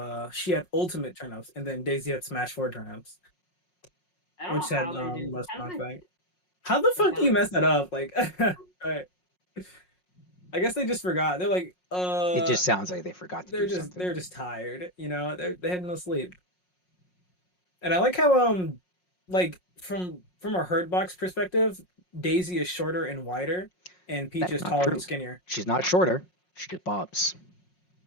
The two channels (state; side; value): late; right; 5.5 ms